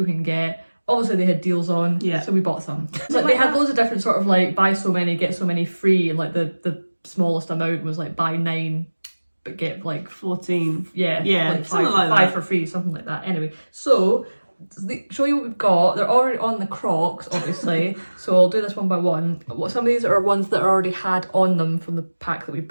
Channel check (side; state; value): both; inverted; correlation -1.00